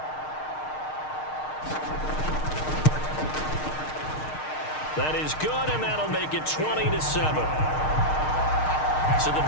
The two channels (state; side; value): late; right; 6.5 ms